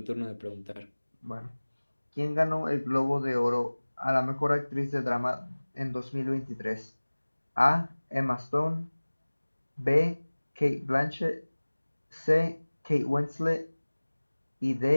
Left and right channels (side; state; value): both; inverted; correlation -1.00